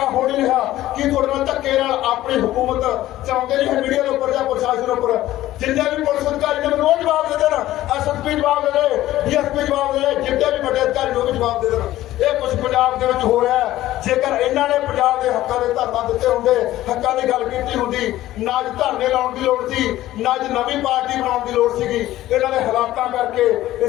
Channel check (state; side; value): quieter; right; 14.9 dB